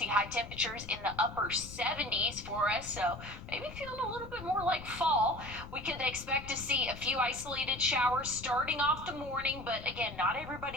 high temperatures in the upper 70s for us, so maybe feeling a little bit more like fall. We could expect to see a few isolated showers starting off the morning, but again, not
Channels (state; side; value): noise; left; rumble, 15 dB below the sound